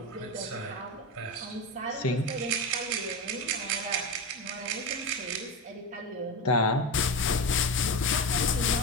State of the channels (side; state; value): both; normal; correlation 0.18